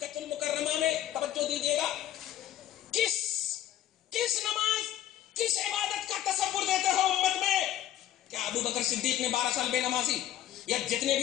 المکرمہ میں. توجہ دیجیے گا, کس نماز کس عبادت کا تصور دیتے ہو امت میں؟ کیا ابو بکر صدیق نے 12 سال بے نمازی یا جتنے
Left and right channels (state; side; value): quieter; right; 12.3 dB